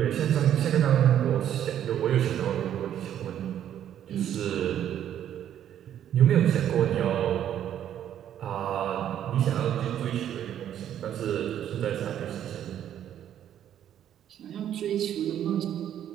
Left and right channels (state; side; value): quieter; left; 10.4 dB